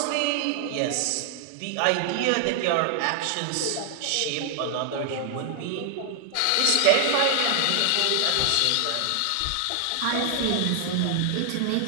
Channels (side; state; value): both; different; correlation 0.00